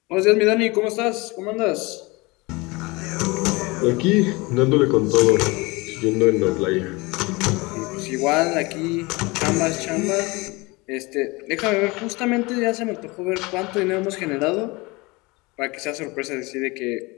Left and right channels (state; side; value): quieter; right; 24.5 dB